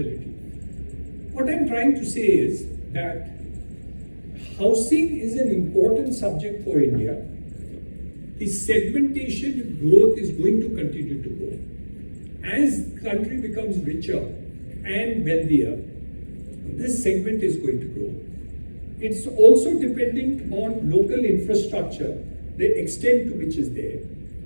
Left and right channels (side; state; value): both; inverted; correlation -1.00